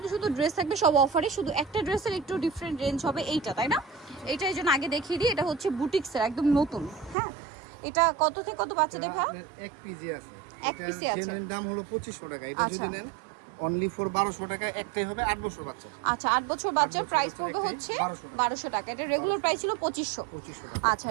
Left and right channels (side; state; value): left; drops out; at 7.2 s